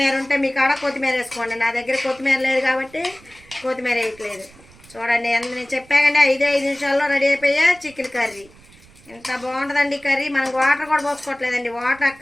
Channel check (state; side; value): noise; right; rumble, 25 dB below the sound